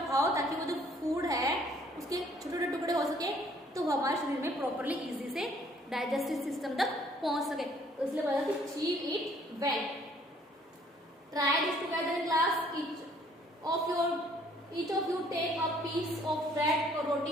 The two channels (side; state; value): both; normal; correlation 0.61